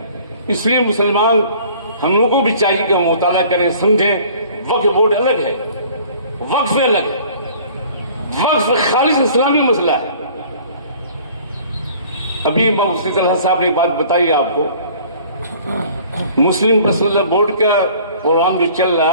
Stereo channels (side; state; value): both; inverted; correlation -0.51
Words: اس لیے مسلمان ہم لوگوں کو بھی چاہیے کہ ہم مطالعہ کریں، سمجھیں۔ وقف بورڈ الگ ہے، وقف الگ ہے، وقف خالص اسلامی مسئلہ ہے۔ ابھی مفتی طلحہ صاحب نے ایک بات بتائی آپ کو، مسلم پرسنل بورڈ کا پروگرام جو چل رہا